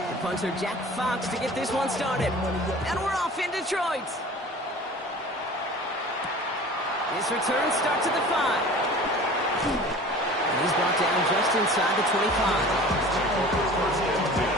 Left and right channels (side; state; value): both; normal; correlation 0.42